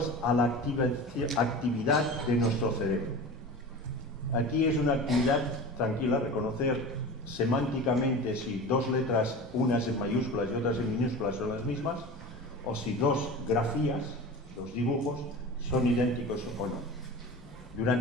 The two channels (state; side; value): normal; both; correlation 0.33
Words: a la actividad de nuestro cerebro. Aquí es una actividad tranquila, reconocer semánticamente si dos letras, unas en mayúsculas y otras en minúsculas, son las mismas, o si dos grafías, los dibujos, son idénticos o no.